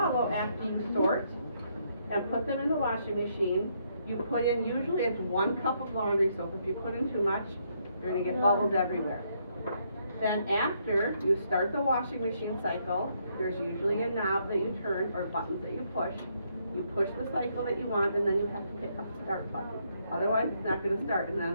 after you sort and put them in the washing machine, you put in, usually it's 1 cup of laundry soap. If you put in too much, you're gonna get bubbles everywhere. Then after you start the washing machine cycle, there's usually a knob that you turn or buttons that you push. You push the cycle that you want, and then you have to pick up the start button. Otherwise, it's not gonna start, and then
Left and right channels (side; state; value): both; inverted; correlation -0.73